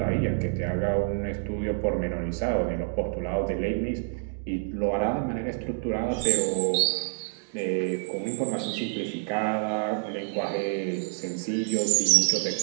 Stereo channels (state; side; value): silent; left; digital silence